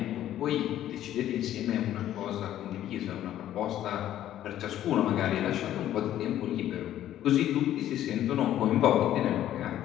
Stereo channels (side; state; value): right; quieter; 12.2 dB